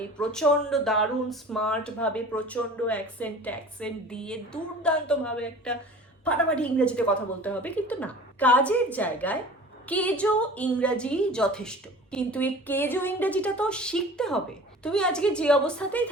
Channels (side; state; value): both; normal; correlation 0.41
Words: এই প্রচন্ড দারুণ স্মার্ট ভাবে, প্রচন্ড অ্যাকসেন্ট দিয়ে দুর্দান্ত ভাবে একটা ফাটাফাটি ইংরেজিতে কথা বলতে হবে, কিন্তু না। কাজের জায়গায় কেজো ইংরাজি যথেষ্ট, কিন্তু এই কেজো ইংরেজিটা তো শিখতে হবে। তুমি আজকে যে অবস্থাতেই